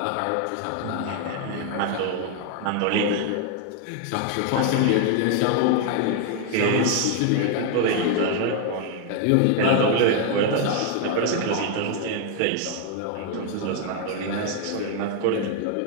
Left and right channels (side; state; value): both; different; correlation 0.01